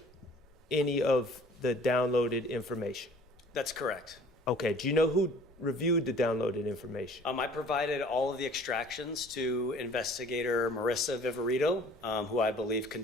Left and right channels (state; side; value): noise; left; rumble, 28 dB below the sound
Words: any of the downloaded information. That's correct. Okay, do you know who reviewed the downloaded information? I provided all of the extractions to investigator Marissa Viverito, who I believe